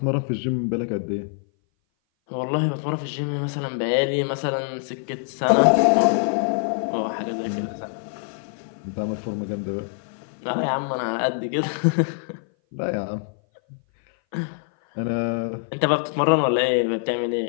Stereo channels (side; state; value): right; silent; 58 dB below the other